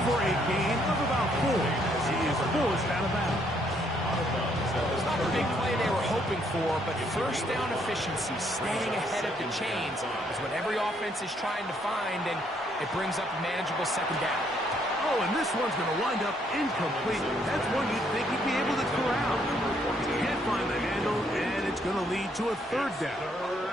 for a gain of about 4. He is forced out of bounds. It's not the big play they were hoping for, but 1st down efficiency, staying ahead of the chains, is what every offense is trying to find, and it brings up a manageable 2nd down. Oh, and this one's going to wind up incomplete. That's one you'd think he'd be able to corral. He can't find the handle, and it's going to lead to a 3rd down.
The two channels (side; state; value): both; normal; correlation 0.70